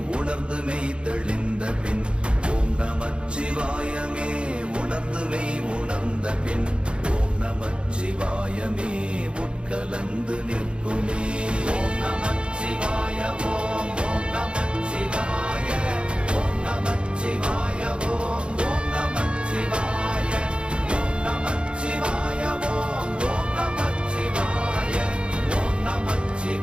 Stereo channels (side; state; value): left; late; 0.056 ms